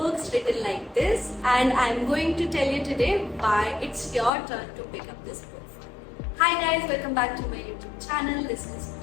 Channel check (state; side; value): drops out; right; at 4.3 s